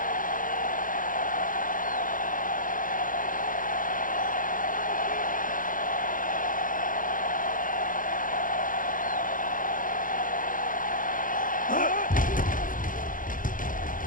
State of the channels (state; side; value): late; right; 0.39 ms